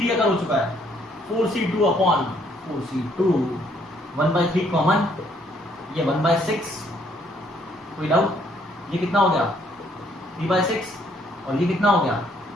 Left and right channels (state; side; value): normal; both; correlation 0.67